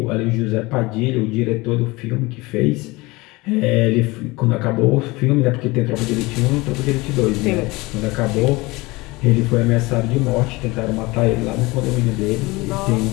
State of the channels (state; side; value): quieter; right; 22.6 dB